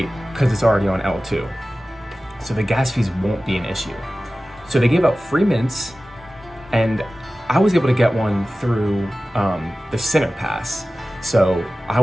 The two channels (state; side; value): normal; both; correlation 0.96